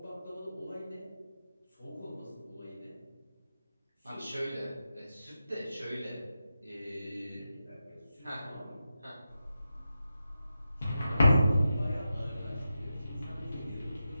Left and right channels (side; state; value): both; inverted; correlation -0.90